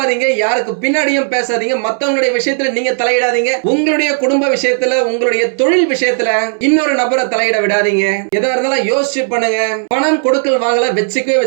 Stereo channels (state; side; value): silent; left; 69 dB below the other